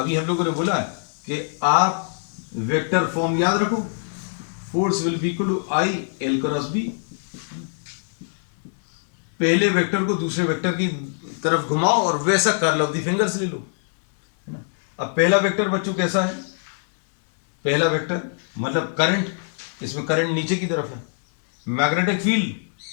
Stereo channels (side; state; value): right; silent; 62 dB below the other